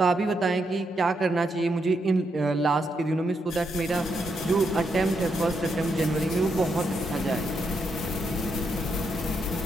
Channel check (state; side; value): normal; both; correlation 0.80